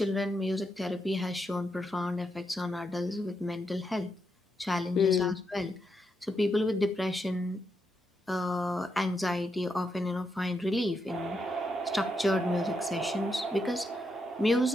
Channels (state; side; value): normal; both; correlation 0.82